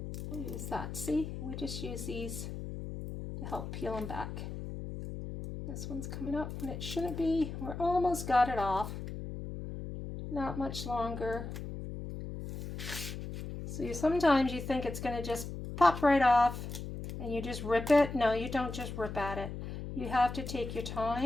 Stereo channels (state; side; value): noise; left; hum, 7 dB below the sound